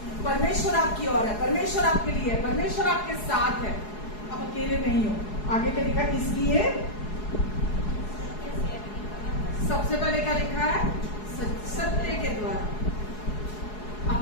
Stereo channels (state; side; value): late; right; 4.7 ms